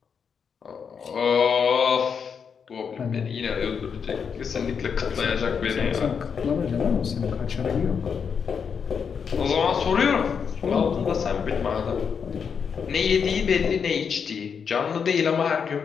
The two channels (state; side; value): quieter; right; 6.5 dB